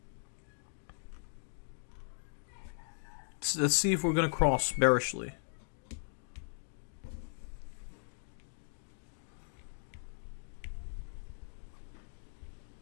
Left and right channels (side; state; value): right; silent; digital silence